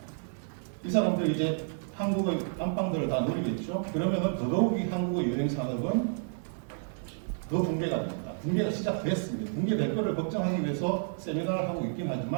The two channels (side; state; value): left; silent; digital silence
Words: 이 사람들 이제 한국의 안방들을 다 노리겠죠. 그러면은 더더욱이 한국의 여행 산업은 더 붕괴가 됩니다. 붕괴가 시작됐습니다. 붕괴될 거를 걱정하기 위해서 세미나를 하고 있긴